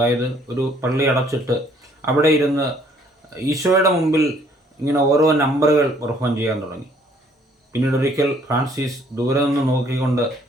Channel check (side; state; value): both; normal; correlation 0.62